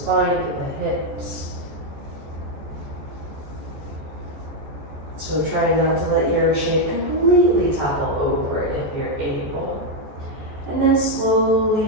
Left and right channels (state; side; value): late; left; 14 ms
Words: through the hips. So try not to let your shape completely topple over if you're able. And then slowly